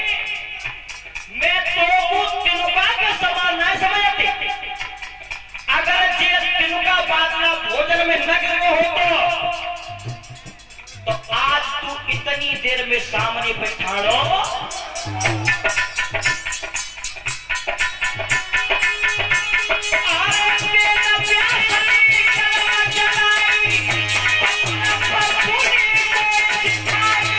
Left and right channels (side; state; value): both; identical; correlation 1.00